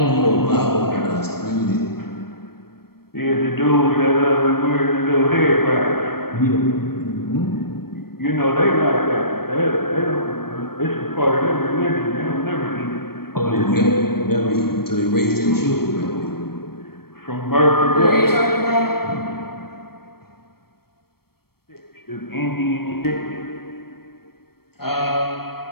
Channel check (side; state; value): right; late; 0.94 ms